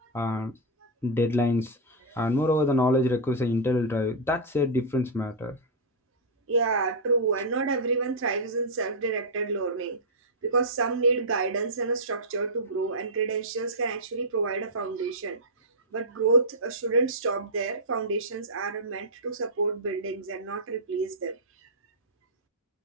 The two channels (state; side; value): normal; both; correlation -0.07